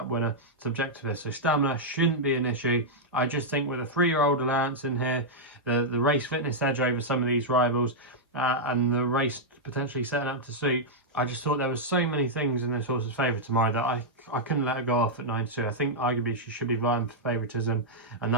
winner, Subjectivist. So stamina shouldn't be an issue. I just think with a 3-year-old allowance in here, the race fitness edge over some of these rivals, and the race potentially setting up to suit, I just thought there was so many things in this horse's favour tomorrow that I couldn't let her go off at 92. I think arguably she should be vying for favouritism, and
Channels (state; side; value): normal; both; correlation -0.06